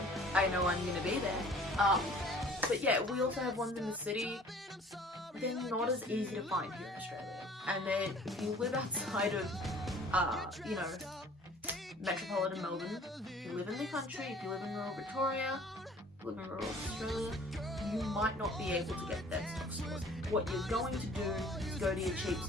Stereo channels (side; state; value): both; normal; correlation 0.51